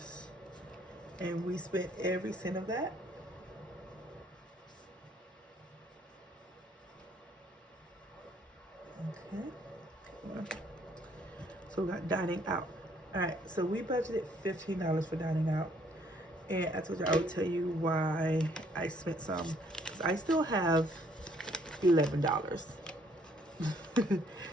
and we spent every cent of that. Okay. So we got dining out. All right, so we budgeted $15 for dining out, and I told you I would tell you why I spent some. 'Cause I still have $11.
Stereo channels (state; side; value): normal; both; correlation 0.64